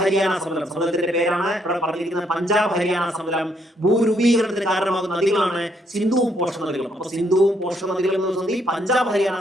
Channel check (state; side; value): normal; both; correlation 0.72